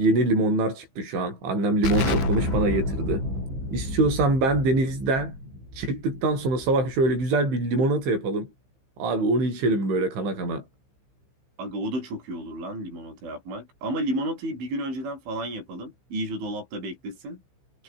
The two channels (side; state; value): left; late; 15 ms